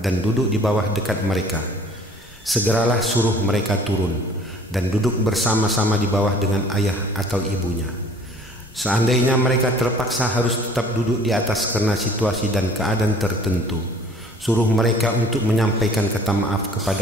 dan duduk di bawah dekat mereka, segeralah suruh mereka turun dan duduk bersama-sama di bawah dengan ayah atau ibunya. Seandainya mereka terpaksa harus tetap duduk di atas karena situasi dan keadaan tertentu, suruh mereka untuk menyampaikan kata maaf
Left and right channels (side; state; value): both; normal; correlation 0.52